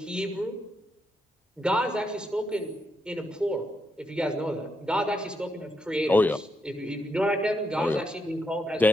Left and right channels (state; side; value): normal; both; correlation 0.80